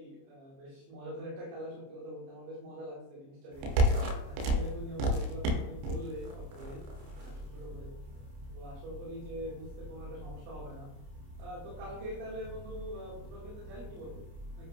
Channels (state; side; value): late; left; 29 ms